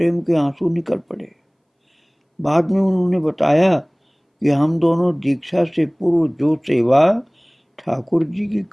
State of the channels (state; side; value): identical; both; correlation 1.00